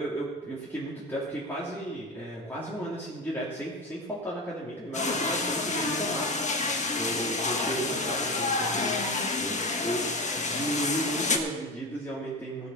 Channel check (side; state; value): both; normal; correlation 0.23